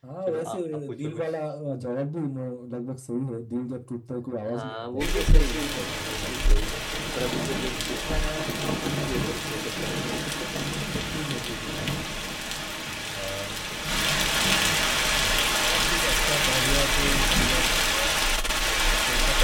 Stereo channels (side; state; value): both; identical; correlation 1.00